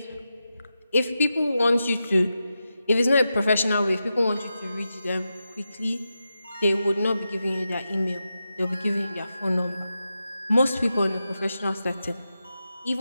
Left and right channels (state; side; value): inverted; both; correlation -0.89